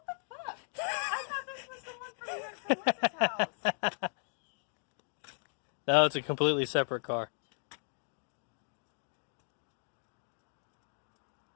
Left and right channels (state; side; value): silent; right; digital silence